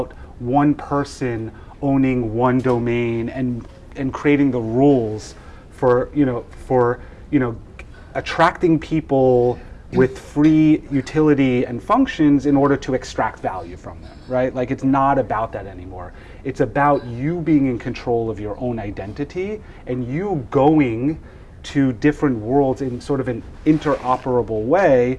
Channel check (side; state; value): both; identical; correlation 1.00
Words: one person owning one domain and and creating the rules for attracting people with free utility and functions in order to extract value from them, right? Like, it's not about that anymore. It's about you being in control of your own identity and you going to different worlds in sort of an interoperable way